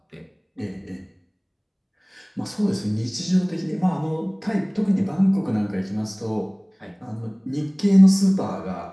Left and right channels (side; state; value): both; identical; correlation 1.00